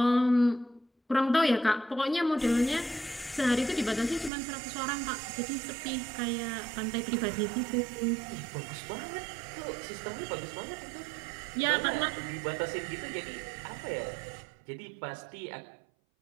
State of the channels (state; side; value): drops out; left; at 4.3 s